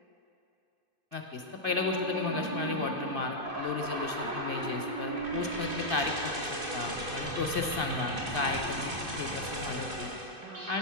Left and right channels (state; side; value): late; left; 2.5 ms